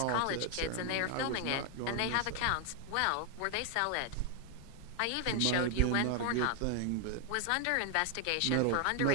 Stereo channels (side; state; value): both; different; correlation 0.00